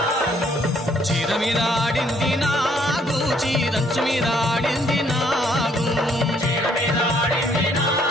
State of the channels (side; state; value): both; normal; correlation 0.66